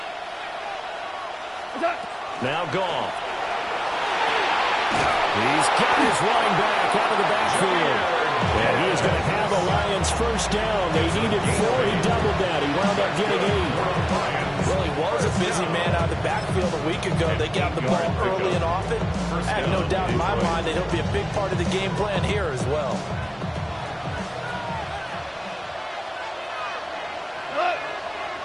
Now Goff. He's got his running back out of the backfield. And he is going to have a Lions 1st down. They needed 4. He doubled that. He wound up getting 8. Well, he was a busy man out of the backfield a week ago. They got the ball early and often. I have no doubt in my mind that he'll be a big part of the game plan here as well.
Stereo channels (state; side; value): identical; both; correlation 1.00